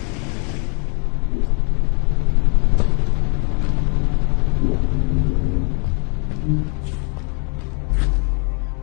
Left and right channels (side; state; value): right; quieter; 37.4 dB